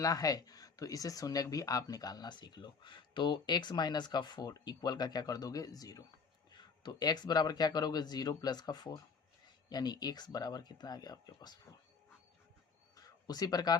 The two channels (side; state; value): right; quieter; 5.3 dB